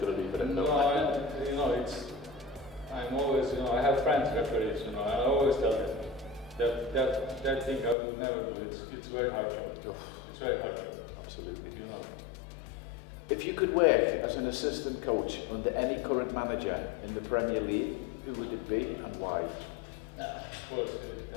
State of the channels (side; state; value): right; drops out; at 8.0 s